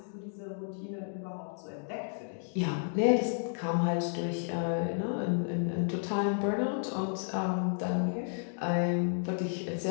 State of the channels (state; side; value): silent; right; digital silence